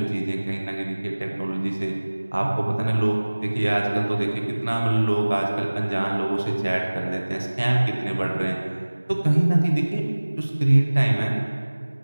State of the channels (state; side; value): inverted; both; correlation -1.00